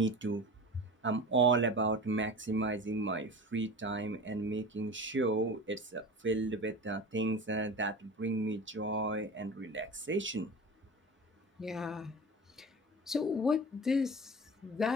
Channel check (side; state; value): both; normal; correlation 0.33